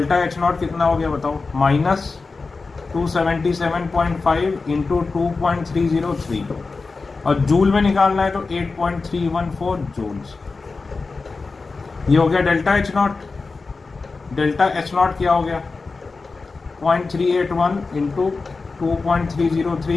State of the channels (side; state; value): right; quieter; 4.1 dB